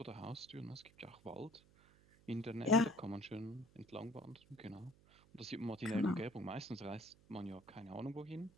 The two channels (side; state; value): right; noise; hum, 26 dB below the sound